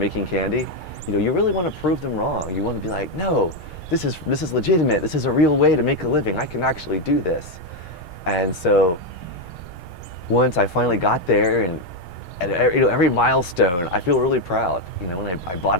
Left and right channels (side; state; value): right; late; 6.4 ms